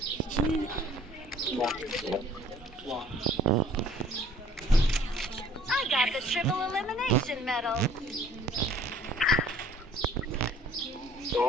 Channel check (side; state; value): both; normal; correlation 0.54